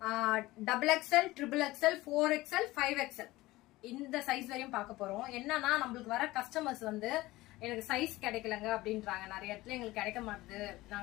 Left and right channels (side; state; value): right; quieter; 18.7 dB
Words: double XL, triple XL, 4XL, 5XL இந்த சைஸ் வரையும் பார்க்க போறோம். என்னன்னா நம்மளுக்கு வர கஸ்டமர்ஸ் வந்து எனக்கு சைஸ் கிடைக்கலங்க அப்படின்றாங்க. நிறைய இடத்துல எங்களுக்கு கிடைக்க மாட்டுது,